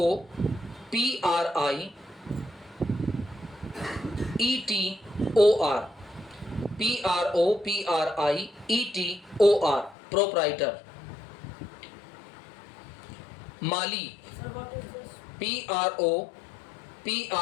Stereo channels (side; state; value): right; drops out; at 10.0 s